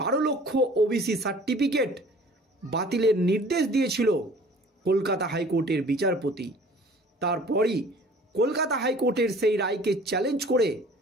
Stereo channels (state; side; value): normal; both; correlation 0.50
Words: লক্ষ ওবিসি সার্টিফিকেট বাতিলের নির্দেশ দিয়েছিল কলকাতা হাইকোর্টের বিচারপতি। তারপরই কলকাতা হাইকোর্টের সেই রায়কে চ্যালেঞ্জ করে